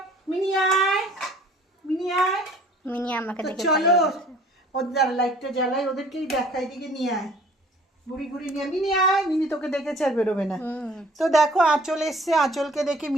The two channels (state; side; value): normal; both; correlation 0.54